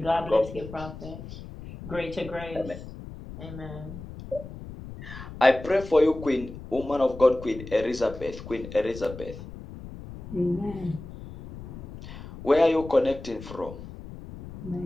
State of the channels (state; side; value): noise; left; rumble, 13 dB below the sound